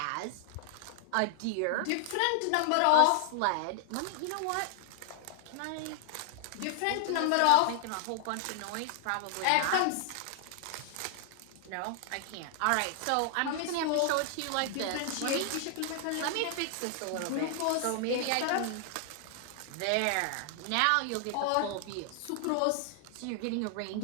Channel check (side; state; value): both; different; correlation -0.01